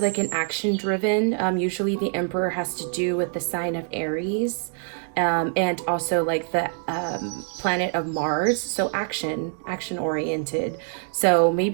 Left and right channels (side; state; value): left; silent; 55 dB below the other